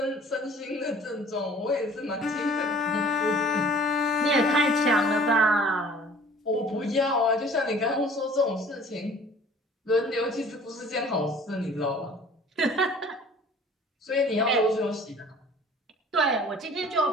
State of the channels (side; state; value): both; normal; correlation 0.49